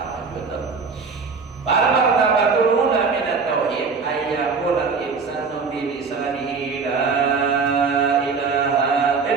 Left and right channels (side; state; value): left; quieter; 5.0 dB